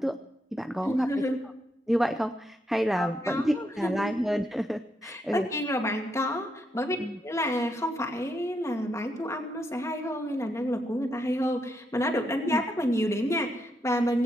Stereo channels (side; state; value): both; normal; correlation 0.80